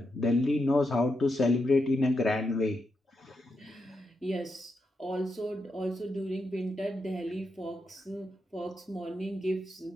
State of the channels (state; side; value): normal; both; correlation 0.84